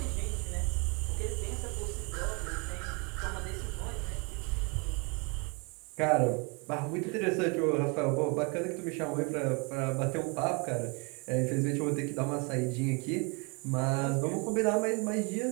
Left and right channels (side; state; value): left; quieter; 31.4 dB